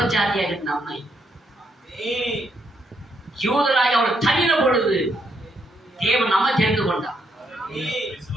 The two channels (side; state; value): both; normal; correlation 0.75